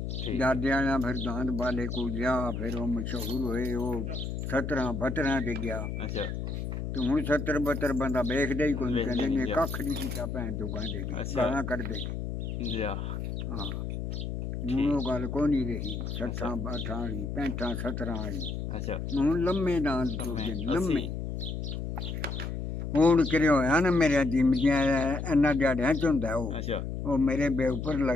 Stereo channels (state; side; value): noise; left; hum, 4 dB below the sound